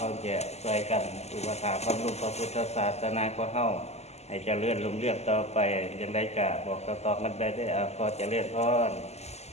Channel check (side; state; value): right; late; 0.31 ms